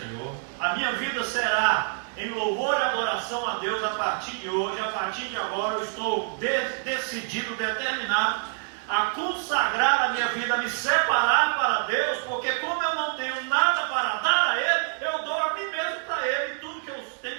A minha vida será em louvor e adoração a Deus a partir de hoje. A partir de agora eu estou decidido, determinado a consagrar a minha vida, a me separar para Deus, porque como eu não tenho nada para dar a Ele, eu dou a mim mesmo para Ele. Tudo que eu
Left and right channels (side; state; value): left; silent; 57 dB below the other